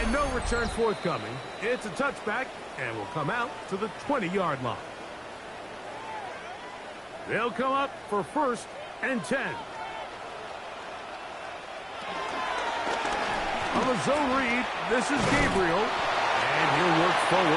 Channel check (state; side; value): identical; both; correlation 1.00